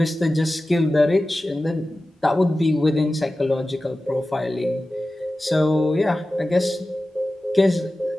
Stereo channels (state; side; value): normal; both; correlation 0.95